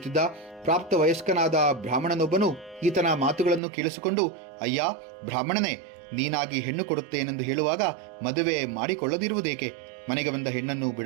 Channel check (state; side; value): drops out; left; at 3.6 s